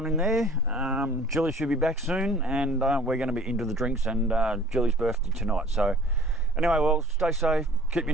in there. Jilly should be back soon, and we're going to be into the drinks, and Jilly's birthday tonight. So anyway, Wells, stay safe, keep your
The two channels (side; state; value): both; normal; correlation 0.49